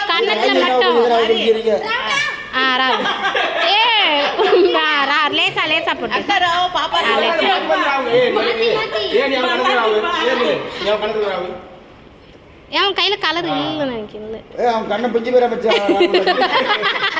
கண்ணத்துல மட்டும். ராவு. லேசா லேசா போட்டு. அவன் கையில கலர் இல்ல நினைக்கிறேன்.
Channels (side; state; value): both; identical; correlation 1.00